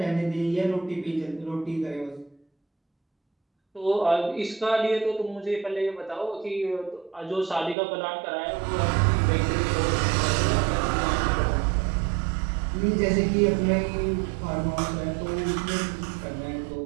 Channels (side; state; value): left; drops out; at 7.8 s